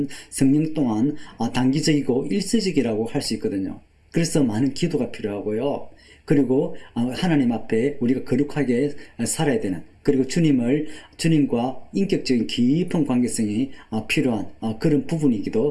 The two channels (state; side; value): identical; both; correlation 1.00